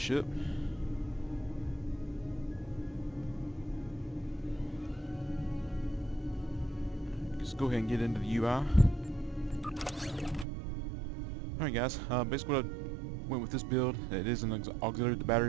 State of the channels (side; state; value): left; drops out; at 10.5 s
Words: Let's go ahead and get into the UI. Alright guys, basically what I went with this build, it is an auxiliary to the